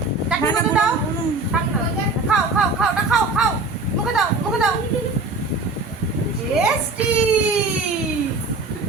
চাটনির মতন দাও খাও খাও খাও ওটা খাও খাও মুখে দাও টেস্টি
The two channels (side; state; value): left; quieter; 3.4 dB